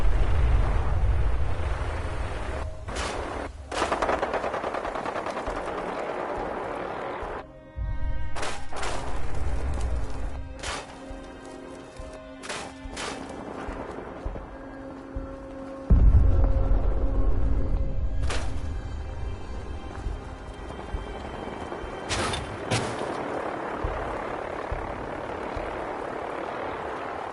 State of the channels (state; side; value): identical; both; correlation 1.00